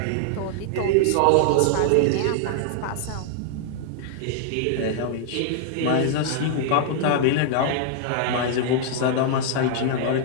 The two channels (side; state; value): both; different; correlation -0.01